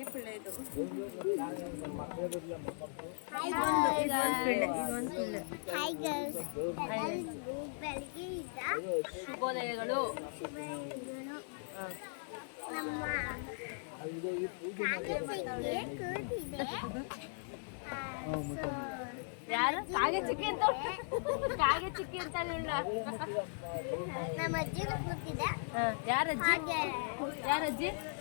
ಪಿಳ್ಳೆ ಇದು. ಹಾಯ್ ಗರ್ಲ್ಸ್, ಬೆಳಗ್ಗೆ ಇದ್ದ ಶುಭೋದಯಗಳು. ನಮ್ಮ ಕಾಗಚಿಕ್ಕೆ ಕೂತಿದೆ. ಯಾರು ಕಾಗೆ ಚಿಕ್ಕಿ ಅಂತ ಕಾಗೆ ಚಿಕ್ಕಿ ಅಂತ ಹೇಳ. ನಮ್ಮ ಅಜ್ಜಿನೂ ಕೂತಿದೆ. ಯಾರಜ್ಜಿ ಹಾಗೆ ಯಾರಜ್ಜಿ?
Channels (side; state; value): right; silent; digital silence